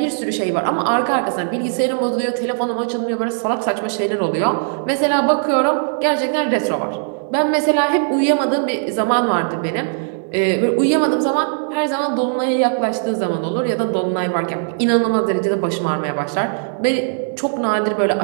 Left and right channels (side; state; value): left; silent; 60 dB below the other